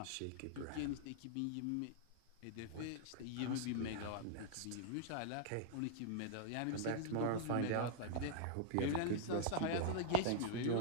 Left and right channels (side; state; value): both; different; correlation -0.01